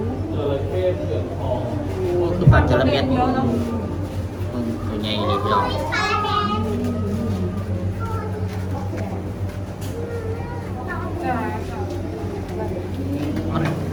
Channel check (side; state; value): both; identical; correlation 1.00